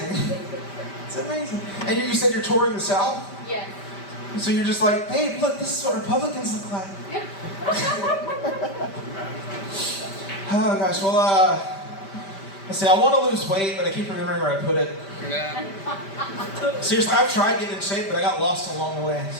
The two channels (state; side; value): late; right; 5.1 ms